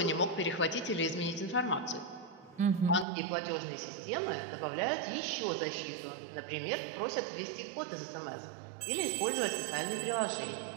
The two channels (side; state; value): left; drops out; at 3.1 s